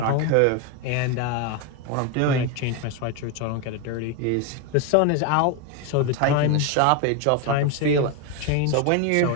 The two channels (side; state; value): both; different; correlation 0.02